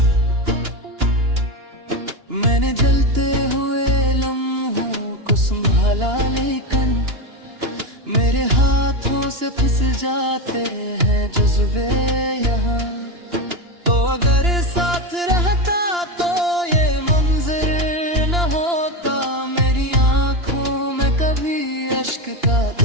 मैंने जलते हुए लम्हों को संभाला, लेकिन मेरे हाथों से फिसल जाते हैं जज्बे यहाँ। तो अगर साथ रहता तो ये मंजर न होता, मेरी आंखों में कभी अश्क का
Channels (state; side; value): late; left; 2.9 ms